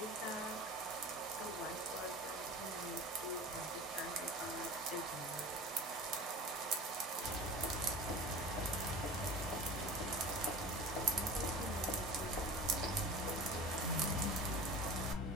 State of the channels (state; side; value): normal; both; correlation 0.36